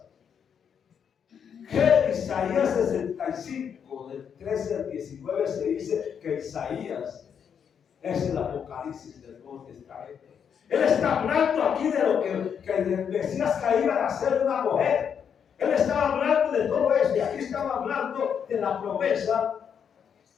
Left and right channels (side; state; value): right; quieter; 7.6 dB